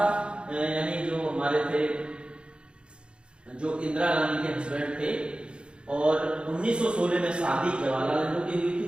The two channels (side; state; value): left; late; 0.055 ms